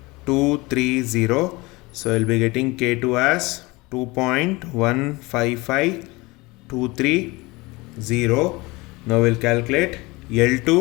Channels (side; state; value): right; quieter; 23.3 dB